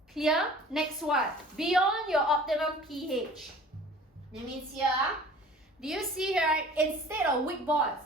Clear? Next one. Beyond your optimum pH. That means here, do you see here, right? Instead of weak bonds,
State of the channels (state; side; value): normal; both; correlation 0.46